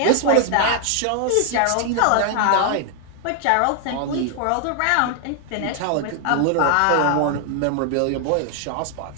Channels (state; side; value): different; both; correlation 0.00